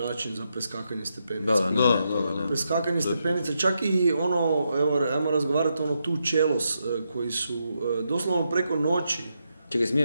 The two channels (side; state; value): both; inverted; correlation -0.83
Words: za preskakanje stepenica. Preskakanje stepenica, čak i ajmo razgovarati tu čelos koji su doslovno preko noći. Čekaj,